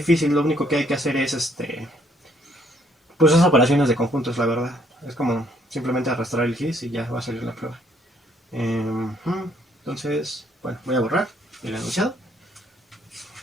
lo único que hay que hacer es pues esas operaciones de conjuntos, la verdad. Es como simplemente arrastrar el GIS y ya va a salir la prueba. Entonces, bueno, voy a borrar el enunciado.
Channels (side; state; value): both; normal; correlation 0.67